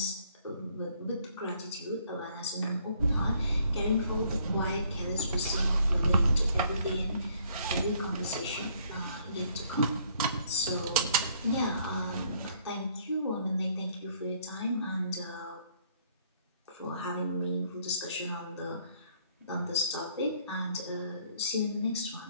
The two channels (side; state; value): both; inverted; correlation -0.65